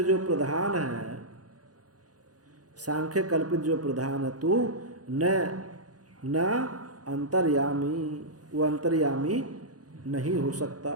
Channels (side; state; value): left; late; 0.68 ms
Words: जो प्रधान है, सांख्य कल्पित जो प्रधान है, तू न अंतर्यामी, वो अंतर्यामी नहीं हो सकता।